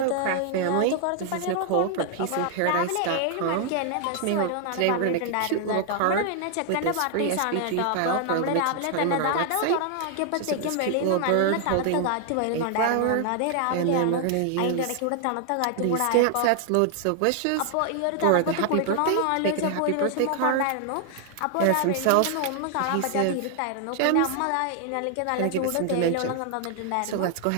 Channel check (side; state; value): both; different; correlation 0.00